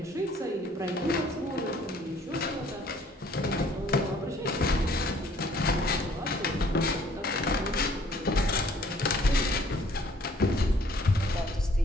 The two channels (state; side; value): normal; both; correlation 0.59